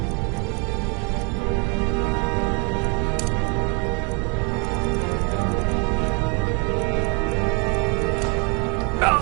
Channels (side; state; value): left; quieter; 34.1 dB